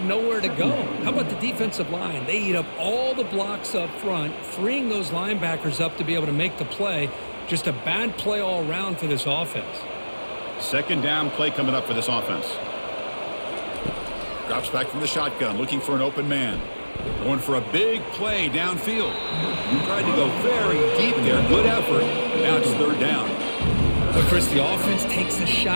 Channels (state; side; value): inverted; both; correlation -1.00